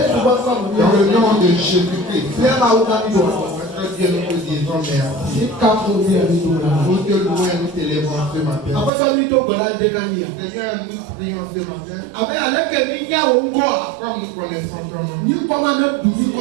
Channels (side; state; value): left; drops out; at 8.9 s